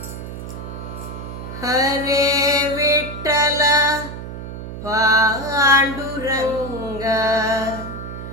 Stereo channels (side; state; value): right; noise; hum, 9 dB below the sound